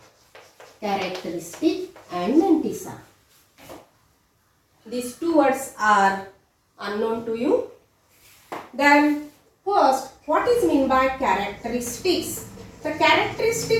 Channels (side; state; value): both; identical; correlation 1.00